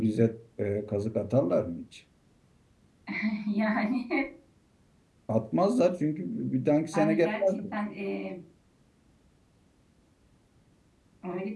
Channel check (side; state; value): both; identical; correlation 1.00